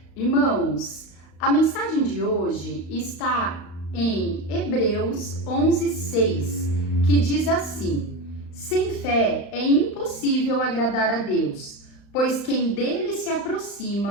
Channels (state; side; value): late; right; 35 ms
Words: Irmãos, a mensagem de hoje está em Hebreus 11:6, que diz assim: sem fé é impossível agradar a Deus, pois quem dele se